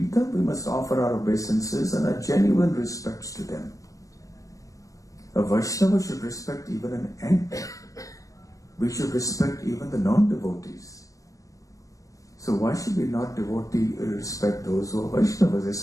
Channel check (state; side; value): late; right; 0.16 ms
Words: them, we must offer our obeisances and our genuine respects to them. A Vaishnava should respect even an ant. We should respect even the non-devotees. So why should we not respect those who are Vaishnavas,